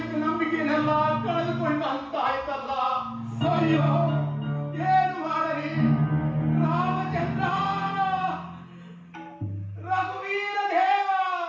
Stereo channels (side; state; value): both; identical; correlation 1.00